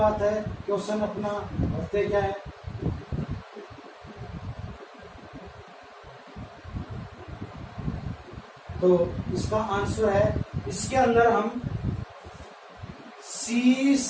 है, क्वेश्चन अपना भरते क्या है, तो इसका आंसर है, इसके अंदर हम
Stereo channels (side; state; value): both; identical; correlation 1.00